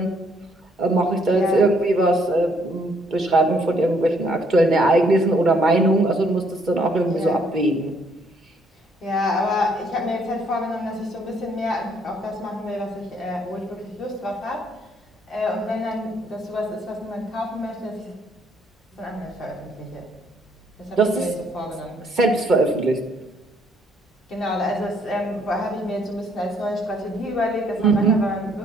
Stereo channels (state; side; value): normal; both; correlation 0.67